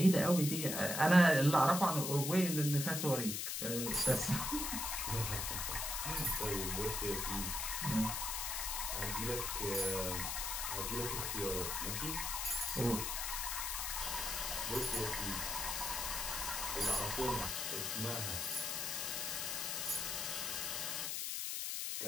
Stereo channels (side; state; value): left; noise; hiss, 1 dB below the sound